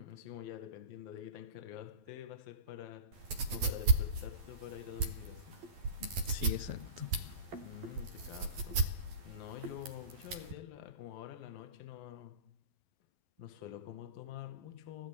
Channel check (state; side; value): late; left; 12 ms